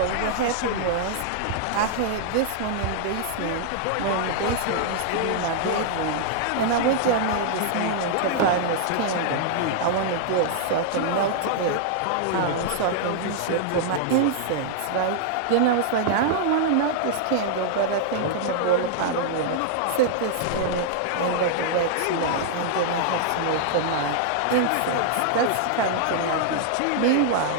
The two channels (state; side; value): different; both; correlation -0.01